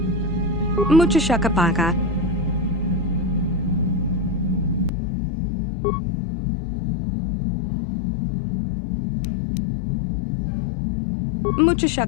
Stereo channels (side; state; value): right; drops out; at 4.9 s